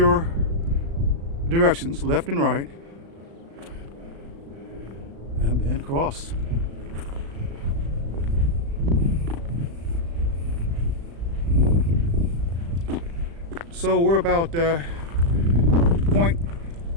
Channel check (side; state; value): left; late; 35 ms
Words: directions, left and right, and then cross. So we're about